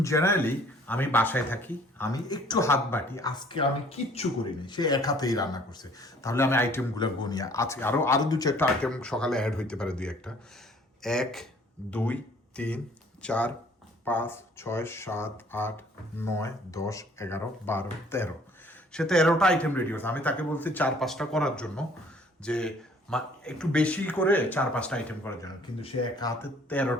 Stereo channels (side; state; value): both; normal; correlation 0.56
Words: জেনারেলি আমি বাসায় থাকি, আমি একটু হাত বাটি, আজকে আমি কিচ্ছু করিনি, সে এক হাতেই রান্না করছে। তাহলে আমি আইটেমগুলো গনি, আজকে আরো দু চারটা আইটেম সকালে অ্যাড হইতে পারে, 2-1টা। 1 2 3 4 5 6 7 8 9 10 11 12 13, সে 13টা আইটেম রেডি হচ্ছে। আমি তাকে বলছি 4-5টা করার জন্য, যে একটু বেশি করে 4-5টা আইটেম করার জন্য, কিন্তু সে এক হাতে